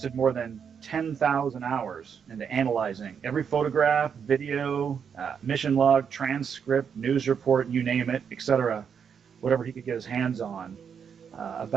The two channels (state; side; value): quieter; left; 7.1 dB